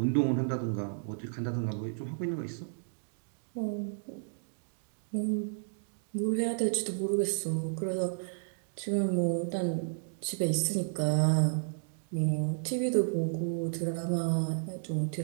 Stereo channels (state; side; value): silent; left; digital silence